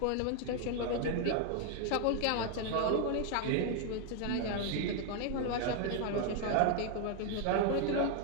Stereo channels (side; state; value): both; different; correlation 0.00